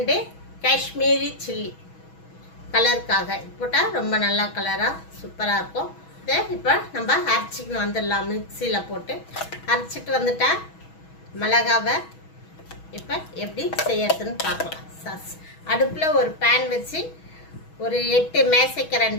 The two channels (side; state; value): right; late; 6.2 ms